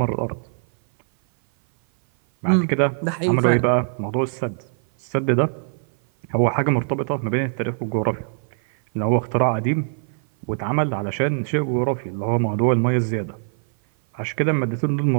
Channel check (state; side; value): silent; left; 57 dB below the other